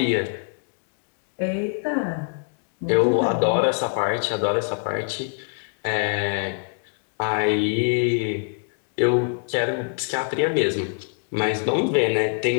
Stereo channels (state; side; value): silent; right; 56 dB below the other